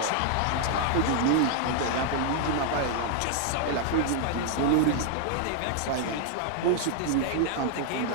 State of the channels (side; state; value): both; different; correlation 0.00